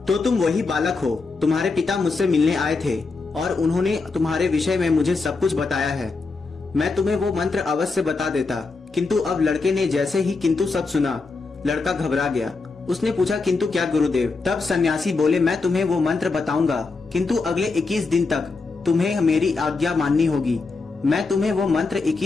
तो तुम वही बालक हो। तुम्हारे पिता मुझसे मिलने आए थे और उन्होंने तुम्हारे विषय में मुझे सब कुछ बताया है। मैं तुम्हें वो मंत्र अवश्य बता देता, किंतु अब लड़के ने जैसे ही किंतु सब सुना, लड़का घबरा गया। उसने पूछा, किंतु क्या गुरुदेव? तब सन्यासी बोले, मैं तुम्हें वो मंत्र बताऊंगा, किंतु अगले 21 दिन तक तुम्हें मेरी आज्ञा माननी होगी। मैं तुम्हें वो मंत्र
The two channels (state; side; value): quieter; right; 4.0 dB